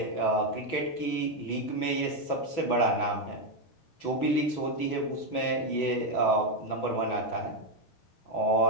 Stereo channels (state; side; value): late; right; 6.1 ms